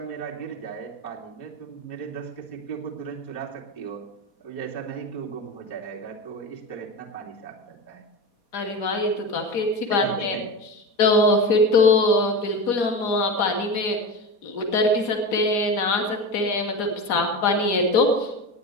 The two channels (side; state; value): right; late; 4.2 ms